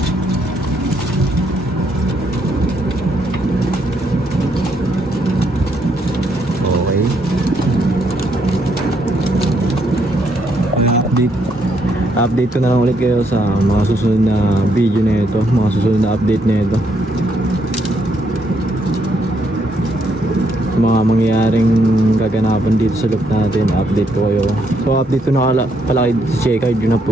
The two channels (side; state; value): both; normal; correlation 0.74